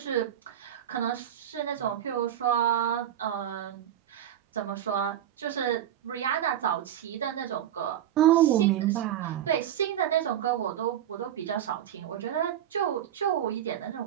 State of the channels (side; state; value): left; quieter; 10.8 dB